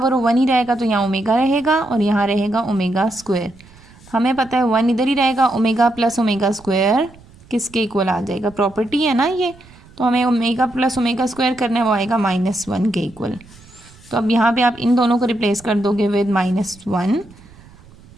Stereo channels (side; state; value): right; noise; rumble, 24 dB below the sound